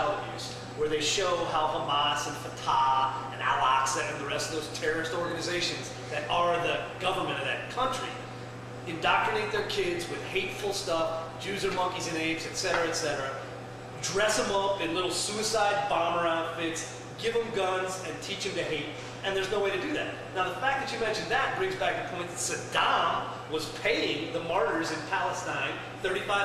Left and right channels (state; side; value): identical; both; correlation 1.00